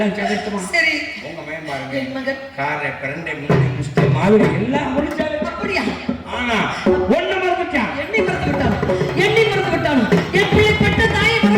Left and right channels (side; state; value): both; identical; correlation 1.00